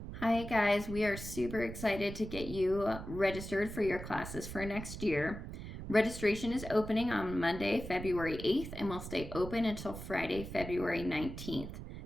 Hi guys, we are super excited to get you registered for your classes for next year. Registration is opening on Monday, February 8th, and will stay open until Friday, February 19th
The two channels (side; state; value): right; noise; rumble, 9 dB below the sound